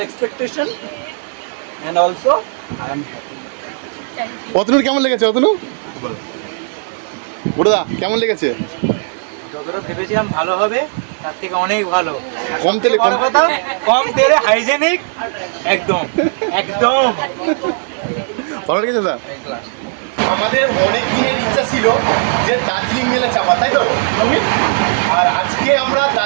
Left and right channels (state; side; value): silent; left; 59 dB below the other